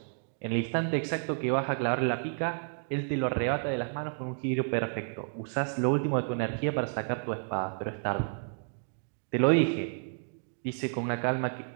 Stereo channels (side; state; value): left; silent; digital silence